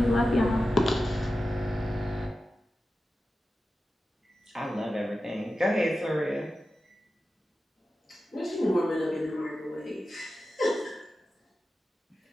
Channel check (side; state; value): both; normal; correlation 0.93